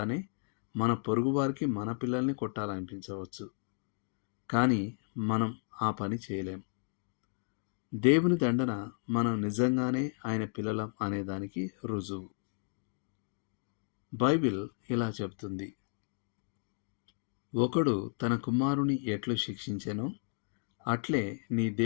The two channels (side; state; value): right; silent; 56 dB below the other